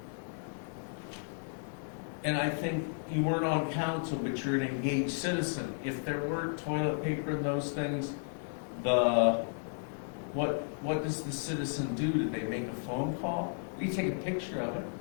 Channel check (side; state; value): right; silent; digital silence